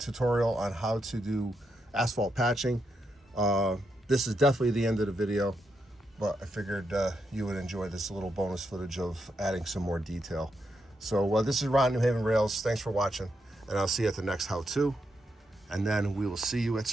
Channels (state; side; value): normal; both; correlation 0.82